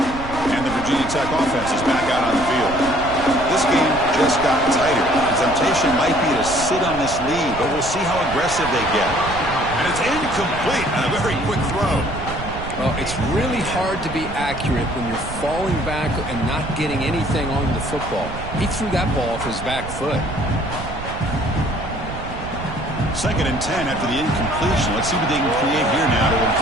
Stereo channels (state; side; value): noise; right; rumble, 10 dB below the sound